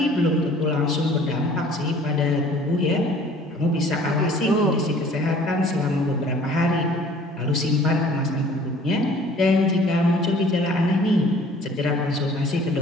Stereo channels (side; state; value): both; normal; correlation 0.52